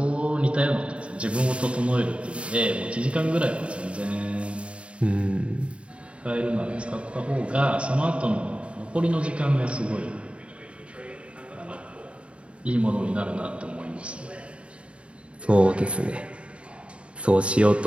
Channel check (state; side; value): late; left; 0.060 ms